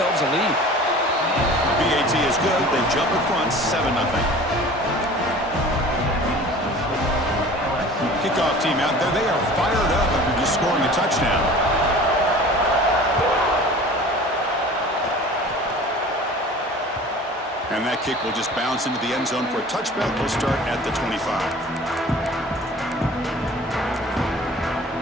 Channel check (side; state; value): both; normal; correlation 0.43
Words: a lead. BAT is good. They jump in front, 7-0. Kickoff team out there. They are fired up after just scoring a touchdown. And that kick will just bounce into the end zone for a touchback. We'll start at the 25.